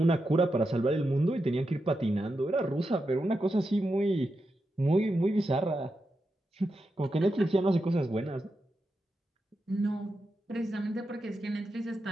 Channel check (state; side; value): normal; both; correlation 0.87